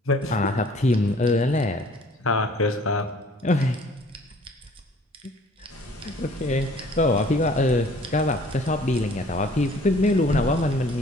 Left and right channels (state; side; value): normal; both; correlation 0.54